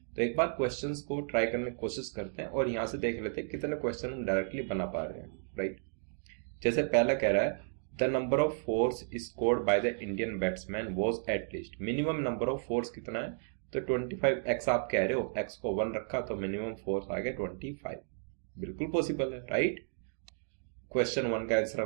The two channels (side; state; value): left; silent; digital silence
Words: तो एक बार क्वेश्चंस को ट्राई करने की कोशिश करते हैं और यहाँ से देख लेते हैं कितने क्वेश्चन हम डायरेक्टली बना पा रहे हैं, राइट। जैसे पहला कह रहा है the number of force scored by the Indian batsman was at least, minimum number of force कितना है, तो 25x आप कह रहे हो, x को 1 रखा तो मिनिमम फोर्स आ गया 25, बिल्कुल पॉसिबल है, राइट। क्वेश्चन 1 का आंसर